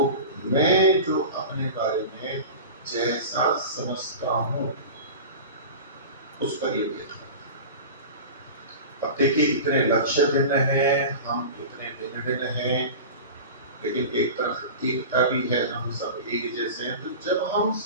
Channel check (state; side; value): inverted; both; correlation -0.32